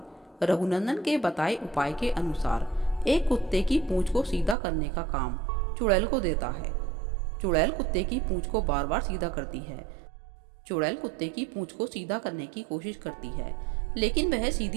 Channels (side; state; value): left; drops out; at 4.5 s